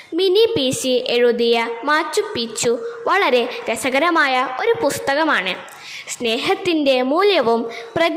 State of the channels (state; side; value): identical; both; correlation 1.00